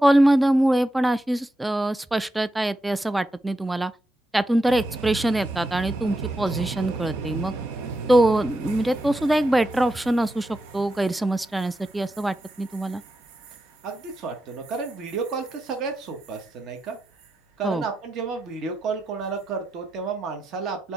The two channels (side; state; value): both; normal; correlation 0.87